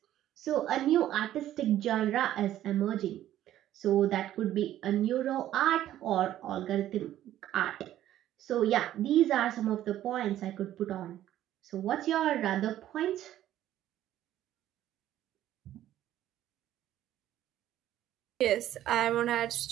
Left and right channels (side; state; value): left; quieter; 12.7 dB